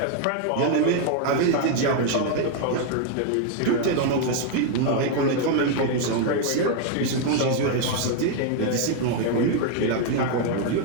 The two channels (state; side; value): different; both; correlation 0.00